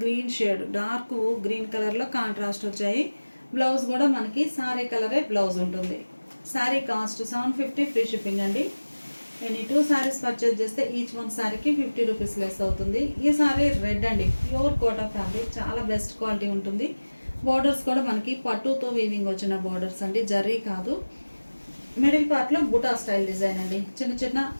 గ్రీన్ షేడ్, డార్క్ గ్రీన్ కలర్లో కాంట్రాస్ట్ వచ్చాయి. బ్లౌజ్ కూడా మనకి సారీ కలరే బ్లౌజ్ ఉంటుంది. శారీ కాస్ట్ 750 ఫ్రీ షిప్పింగ్ అండి. ఎనీ 2 సారీస్ పర్చేజ్ చేస్తే ఈచ్ వన్ సారీకి 50 రూపీస్ లెస్ అవుతుంది. ఈ సారీ రెడ్ అండి. ప్యూర్ కోటా ఫ్యాబ్రిక్, చాలా బెస్ట్ క్వాలిటీ ఉంటుంది. బోర్డర్స్ కూడా మనకి పట్టుతో వీవింగ్ వచ్చిన బోర్డర్స్ అండి, జరీ కాదు. మిడిల్ పార్ట్లో బుటా స్టైల్ డిజైన్ అండి. చిన్న చిన్న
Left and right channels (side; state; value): both; inverted; correlation -1.00